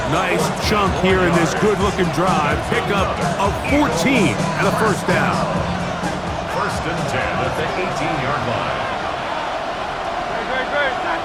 Nice chunk here in this good-looking drive. Pickup of 14 and a first down. 1st and 10 at the 18-yard line.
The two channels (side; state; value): both; identical; correlation 1.00